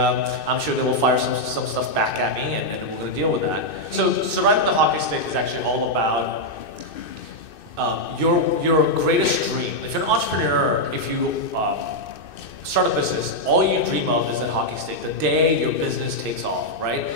sure they will fire some stuff back at me, and then we're going to deal with that. So, surviving the hockey stick is actually all about your greatest dream. If you're an entrepreneur, if you start a business, all you dream of is that hockey stick, the day your business takes off, right?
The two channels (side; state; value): right; late; 2.6 ms